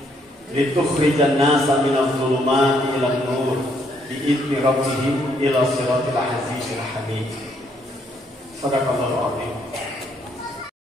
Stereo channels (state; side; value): normal; both; correlation 0.70